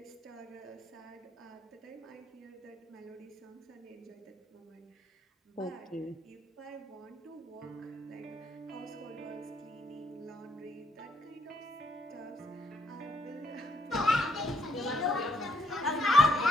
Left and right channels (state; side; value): normal; both; correlation 0.72